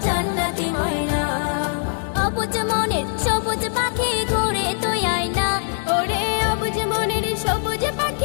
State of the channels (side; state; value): right; silent; digital silence